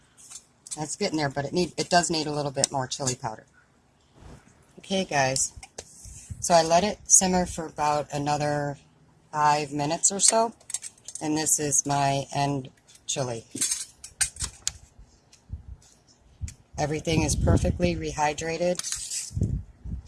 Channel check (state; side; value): identical; both; correlation 1.00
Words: That's getting there, but it does need a little bit more chili powder. Okay, guys. So I let it simmer for about another 5 minutes or so, and this is my end chili. Everything is perfectly rehydrated.